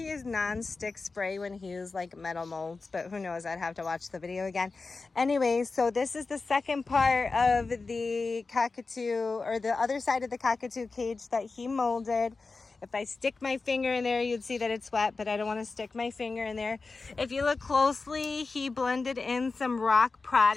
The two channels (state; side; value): quieter; right; 4.0 dB